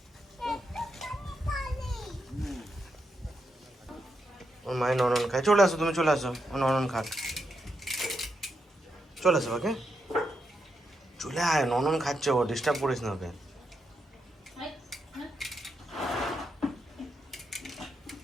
ওর মায়ের ননন খায়, চলে আসো, তুমি চলে আসো, ও ননন খাক, চলে আসো ওকে। চলে আয়, ননন খাচ্ছে, ও ডিস্টার্ব করিস না ওকে।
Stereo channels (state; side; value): normal; both; correlation 0.83